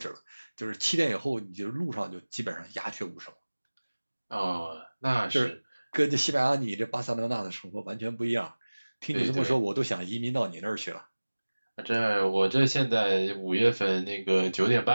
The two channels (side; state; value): both; inverted; correlation -1.00